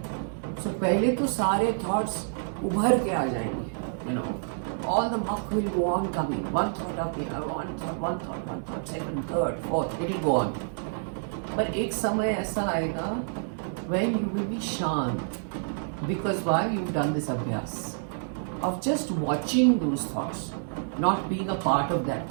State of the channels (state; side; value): silent; left; digital silence